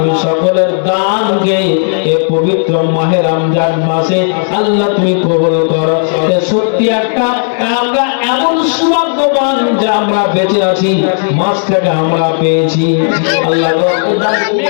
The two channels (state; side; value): silent; right; 73 dB below the other